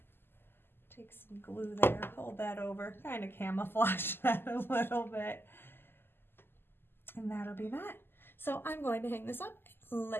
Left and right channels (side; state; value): right; late; 0.11 ms